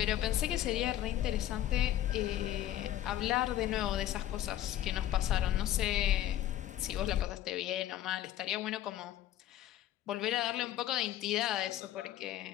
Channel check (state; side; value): quieter; right; 12.9 dB